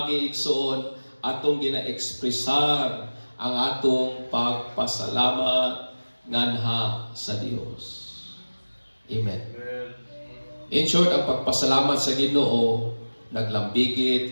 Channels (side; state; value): both; inverted; correlation -1.00